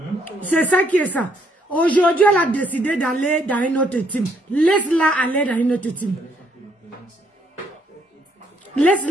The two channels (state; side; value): normal; both; correlation 0.70